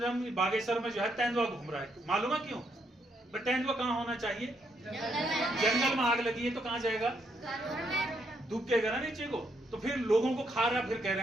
हम बागेश्वर में जो है तेंदुआ घूम रहा है, मालूम है क्यों? तेंदुआ कहाँ होना चाहिए? जंगल में आग लगी है तो कहाँ जाएगा? दुबकेगा ना नीचे को, तो फिर लोगों को खा रहा, फिर कह रहे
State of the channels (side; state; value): both; normal; correlation 0.76